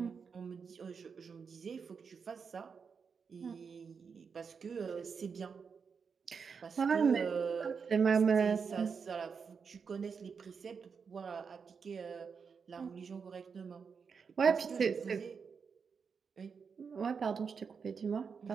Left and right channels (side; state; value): left; quieter; 5.9 dB